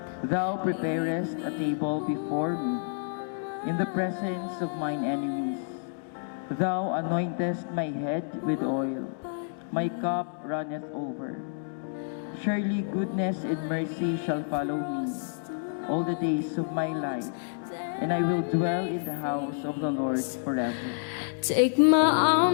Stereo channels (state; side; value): silent; right; digital silence